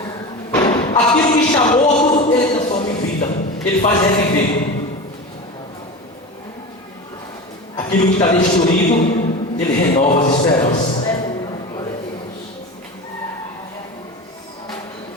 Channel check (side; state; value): both; normal; correlation 0.28